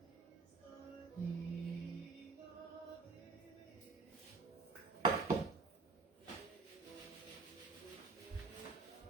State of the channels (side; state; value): left; quieter; 4.2 dB